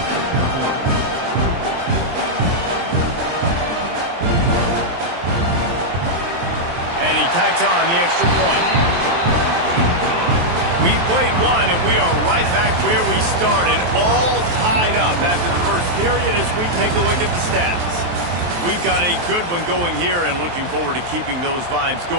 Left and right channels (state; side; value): late; left; 23 ms